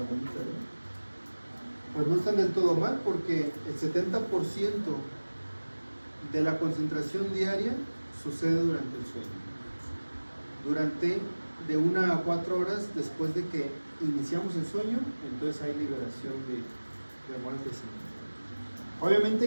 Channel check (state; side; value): inverted; both; correlation -1.00